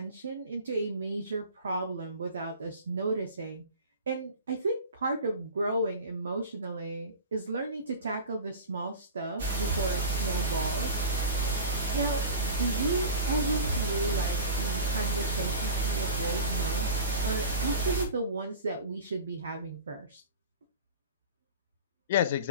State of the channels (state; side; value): inverted; both; correlation -0.32